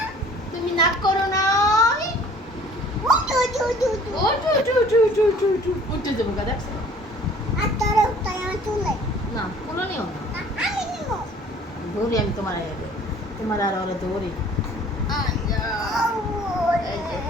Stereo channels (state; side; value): normal; both; correlation 0.52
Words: তুমি রাগ করো না? ও চু চু চু চু চু। উঠে যাবো গা দেখছো? না, কোনো নিও না। ধরি আমি তোমার আর ওরা ধরি।